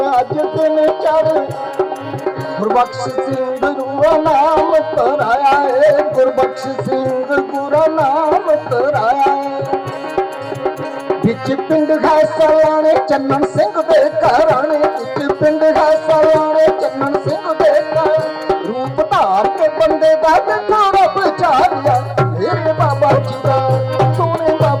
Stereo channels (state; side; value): identical; both; correlation 1.00